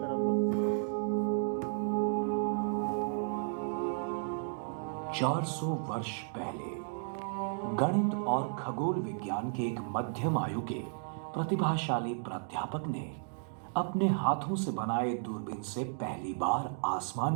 तरफ लोग 400 वर्ष पहले गणित और खगोल विज्ञान के एक मध्यम आयु के प्रतिभाशाली प्राध्यापक ने अपने हाथों से बनाए दूरबीन से पहली बार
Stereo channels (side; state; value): left; silent; digital silence